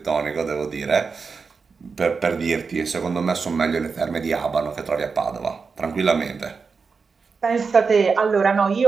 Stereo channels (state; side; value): quieter; left; 5.0 dB